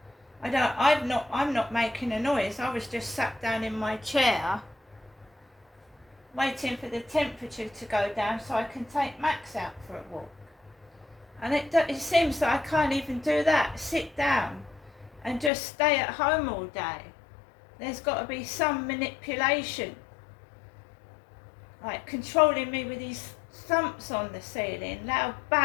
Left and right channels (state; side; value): drops out; right; at 15.5 s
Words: I'm not making a noise. I was just sat down in my chair waiting for the temperature to go down so I can take Max out for a walk. And it seems that I can't even do that, sit down and just stay at home all day. There's got to be some manipulation, like controlling me with these thumps on the ceiling, loud